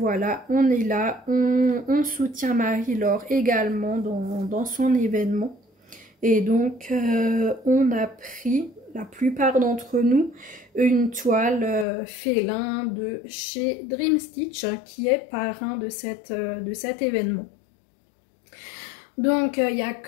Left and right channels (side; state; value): right; drops out; at 11.9 s